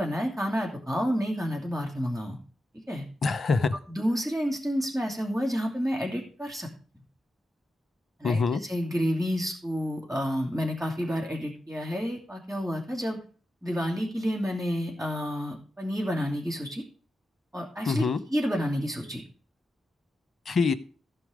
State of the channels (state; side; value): normal; both; correlation 0.90